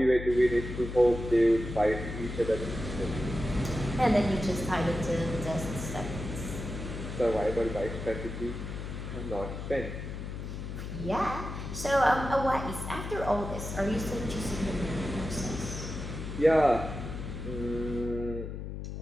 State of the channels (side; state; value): left; noise; hum, 7 dB below the sound